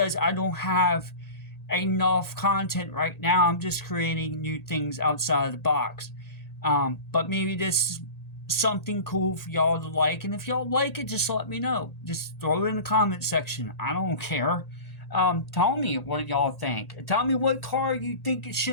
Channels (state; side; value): late; right; 1.8 ms